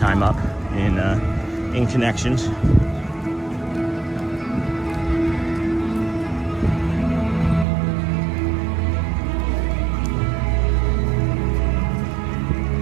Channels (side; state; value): left; drops out; at 7.7 s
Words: up in connections.